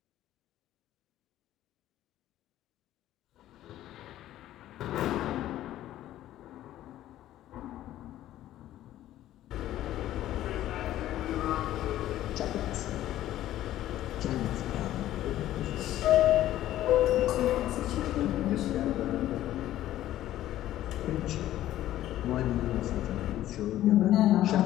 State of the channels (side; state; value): right; quieter; 13.5 dB